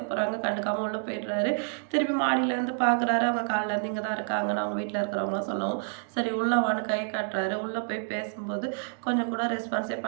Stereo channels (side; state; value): left; silent; digital silence